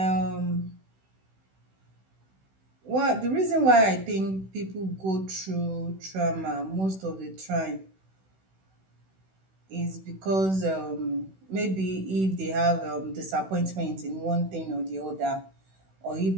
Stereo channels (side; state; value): left; late; 16 ms